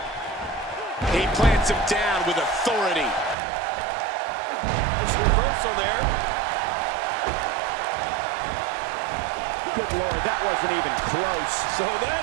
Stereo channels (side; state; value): left; drops out; at 3.4 s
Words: He plants him down with authority. Nice reversal there. Good Lord, that wasn't even close. So